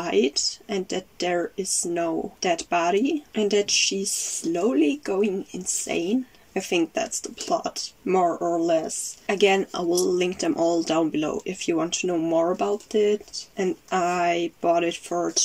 and that there is no dead body and that she's slowly going insane. I think that's the plot, more or less. Again, I will link them all down below if you want to know more about it. And I bought it for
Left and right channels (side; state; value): both; identical; correlation 1.00